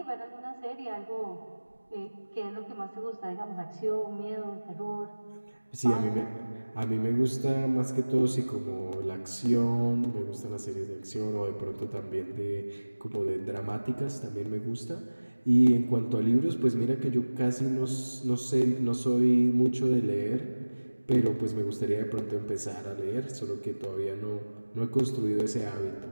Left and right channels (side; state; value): both; inverted; correlation -1.00